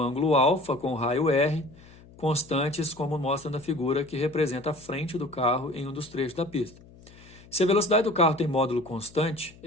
alfa com raio R, constantes como mostra na figura que representa a frente do carro em um dos trechos da pista. Se a velocidade do carro tem módulo constante,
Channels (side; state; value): left; noise; hum, 23 dB below the sound